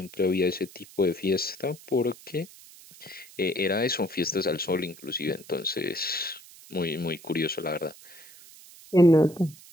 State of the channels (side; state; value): right; noise; hiss, 20 dB below the sound